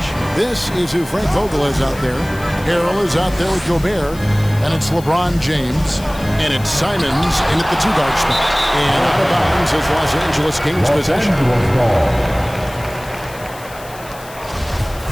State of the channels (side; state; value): left; noise; hiss, 19 dB below the sound